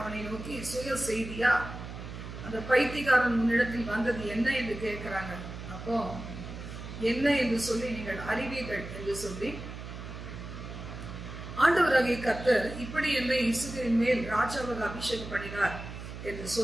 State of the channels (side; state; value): right; noise; hum, 10 dB below the sound